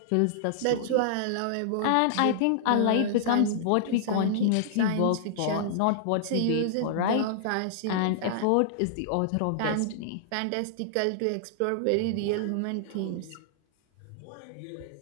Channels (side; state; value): both; different; correlation -0.01